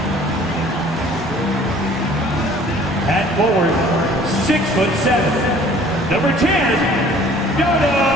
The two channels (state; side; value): normal; both; correlation 0.52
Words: At forward, 6'7", number 10, Dodo